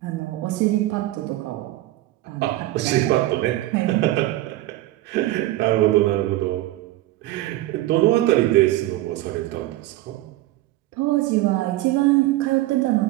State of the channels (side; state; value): left; quieter; 16.6 dB